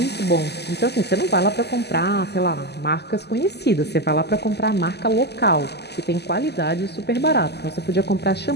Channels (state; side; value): late; right; 0.49 ms